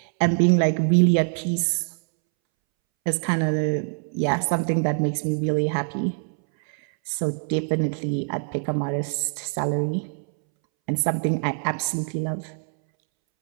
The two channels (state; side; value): silent; left; 63 dB below the other